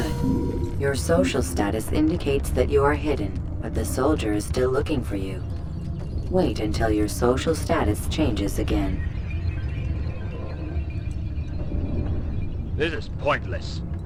Your social status indicates that you are hidden, but the soldier is still looking for you. Wait until your social status changes again. This is pointless.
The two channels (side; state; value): both; identical; correlation 1.00